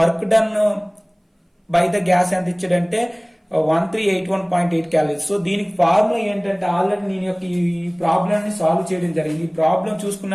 done by the gas ఎంత ఇచ్చాడంటే 1381.8 క్యాలరీస్. సో దీనికి ఫార్ములా ఏంటంటే ఆల్రెడీ నేను యొక్క ఈ ప్రాబ్లమ్ ని సాల్వ్ చేయడం జరిగింది. ఈ ప్రాబ్లం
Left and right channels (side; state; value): both; identical; correlation 1.00